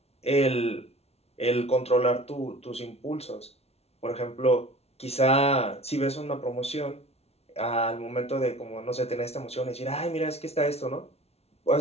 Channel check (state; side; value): late; right; 0.30 ms